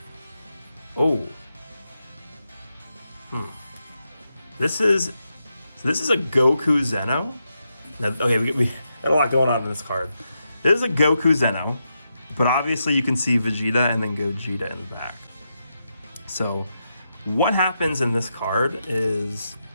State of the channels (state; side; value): inverted; both; correlation -0.85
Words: Oh. This is a Goku Zeno. Now, okay, we got a lot going on in this card. This is a Goku Zeno, but obviously you can see Vegeta and then Gogeta in the back. So what happens in this card is